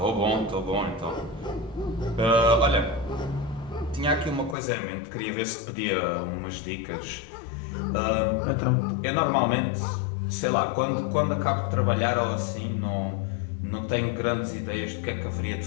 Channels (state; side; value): drops out; right; at 4.5 s